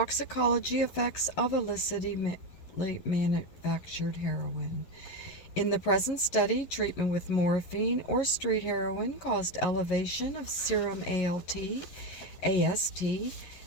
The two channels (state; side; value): late; right; 11 ms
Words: effects of illicitly manufactured heroin. In the present study, treatment with morphine or street heroin caused elevation of serum ALT, AST,